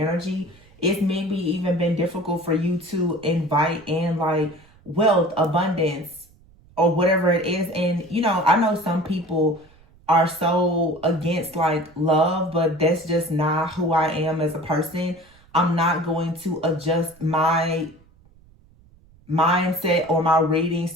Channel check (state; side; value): noise; right; rumble, 28 dB below the sound